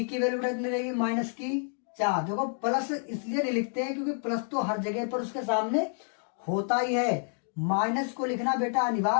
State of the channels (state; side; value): silent; right; 59 dB below the other